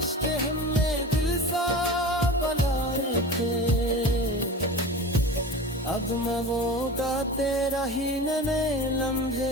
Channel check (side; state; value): both; normal; correlation 0.33